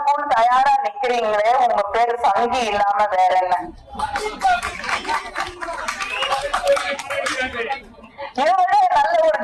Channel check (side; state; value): both; identical; correlation 1.00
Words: தயாரா நிக்கிறீங்களே, உங்க பேரு சங்கி இல்லாம வேற என்ன? இவரு நல்ல ஒரு